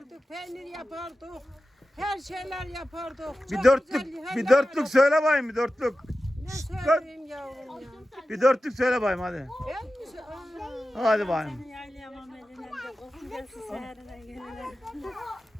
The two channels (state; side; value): normal; both; correlation 0.94